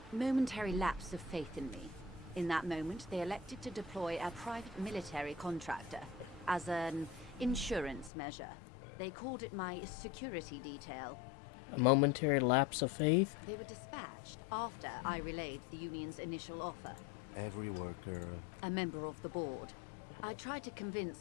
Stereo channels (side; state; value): right; drops out; at 8.1 s